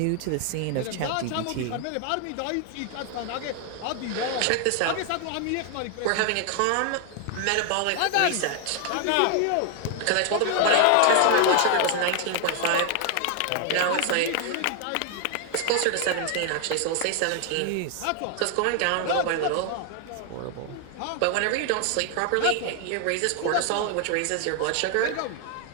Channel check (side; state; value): both; different; correlation 0.00